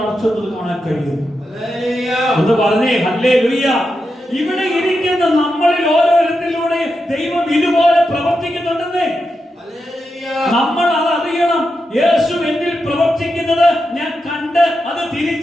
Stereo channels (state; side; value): normal; both; correlation 0.87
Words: കാണാൻ കഴിയും. എന്ന് പറഞ്ഞേ ഹല്ലേലൂയ. ഇവിടെ ഇരിക്കുന്ന നമ്മളിൽ ഓരോരുത്തരിലൂടെ ദൈവം ഇതുപോലെ പ്രവർത്തിക്കുന്നുണ്ടെന്നേ നമ്മൾ അത് അറിയണം. യേശു എന്നിൽ പ്രവർത്തിക്കുന്നത് ഞാൻ കണ്ട് അത്